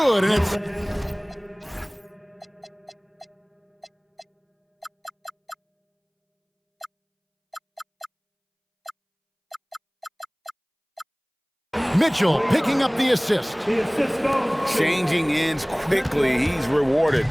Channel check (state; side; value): identical; both; correlation 1.00